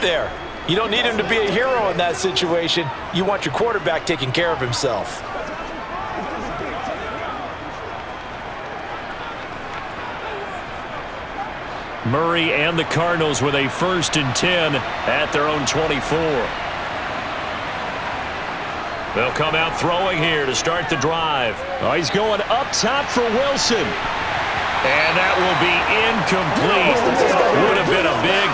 there. You don't need him to be a hero in that situation. You want your quarterback taking care of himself. Murray and the Cardinals with a 1st and 10 at their own 24. They'll come out throwing here to start the drive. Oh, he's going up top for Wilson. And that will be incomplete. Would have been a big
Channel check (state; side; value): identical; both; correlation 1.00